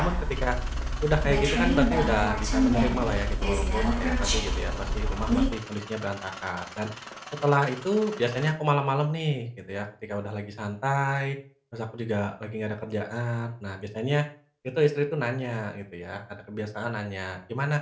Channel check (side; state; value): both; identical; correlation 1.00